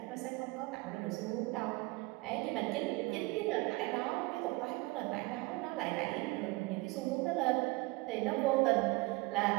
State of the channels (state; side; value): quieter; left; 23.5 dB